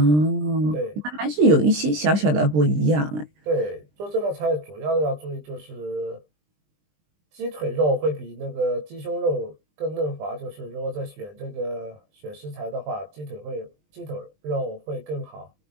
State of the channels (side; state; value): left; late; 20 ms